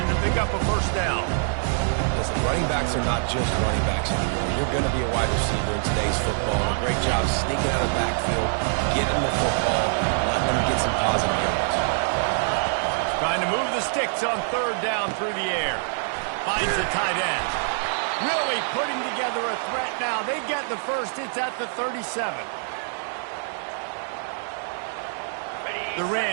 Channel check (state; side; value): silent; left; digital silence